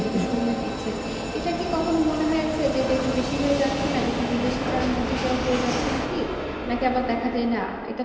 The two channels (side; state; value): both; identical; correlation 1.00